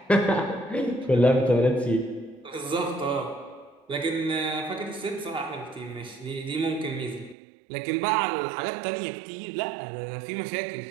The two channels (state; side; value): drops out; left; at 7.4 s